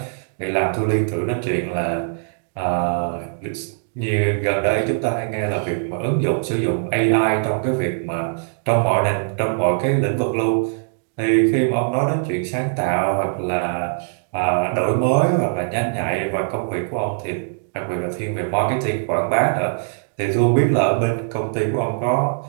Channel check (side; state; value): left; silent; digital silence